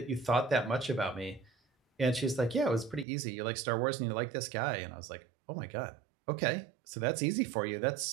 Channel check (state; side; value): drops out; left; at 3.1 s